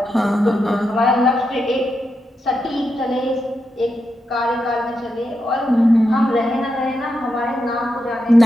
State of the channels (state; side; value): normal; both; correlation 0.85